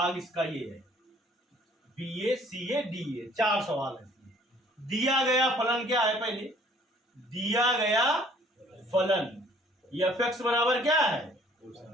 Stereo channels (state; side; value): normal; both; correlation 0.57